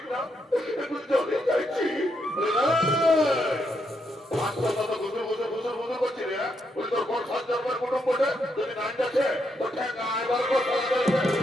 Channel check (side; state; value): both; normal; correlation 0.79